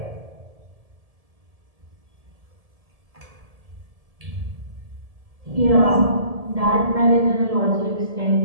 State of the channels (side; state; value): left; late; 1.7 ms